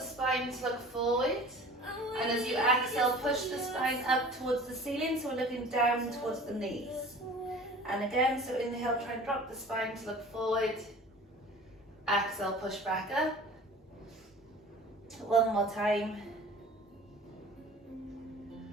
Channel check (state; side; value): normal; both; correlation 0.43